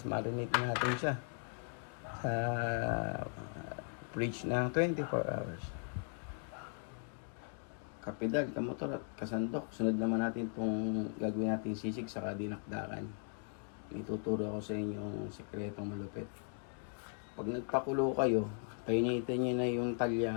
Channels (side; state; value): right; silent; 52 dB below the other